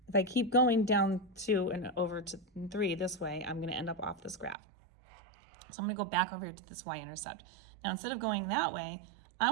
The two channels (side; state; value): left; drops out; at 4.5 s